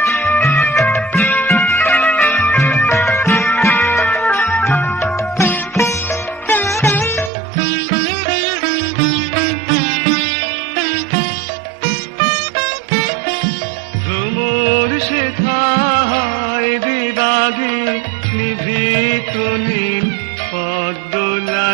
নিভৃত নীল পদ্ম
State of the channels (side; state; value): left; drops out; at 7.3 s